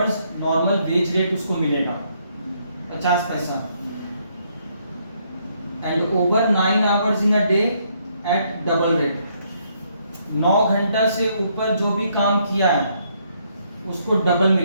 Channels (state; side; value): inverted; both; correlation -0.72